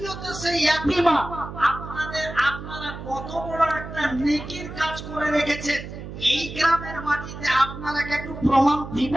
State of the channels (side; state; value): right; noise; hum, 10 dB below the sound